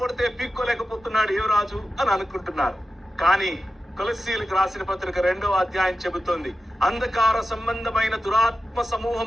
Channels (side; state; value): both; normal; correlation 0.92